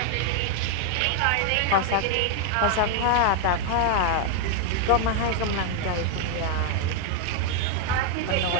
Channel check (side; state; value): both; different; correlation 0.00